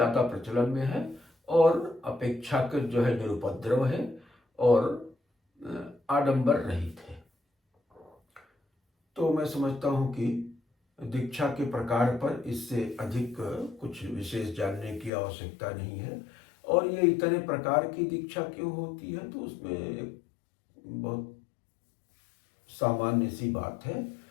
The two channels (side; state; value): right; drops out; at 15.1 s